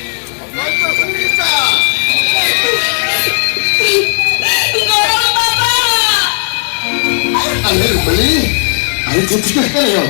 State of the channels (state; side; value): silent; right; digital silence